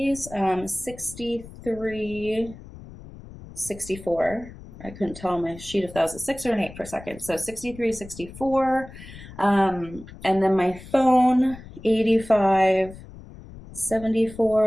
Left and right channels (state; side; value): noise; left; rumble, 16 dB below the sound